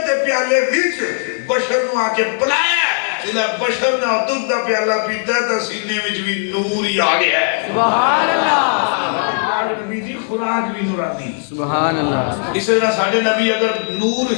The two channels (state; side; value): silent; right; 68 dB below the other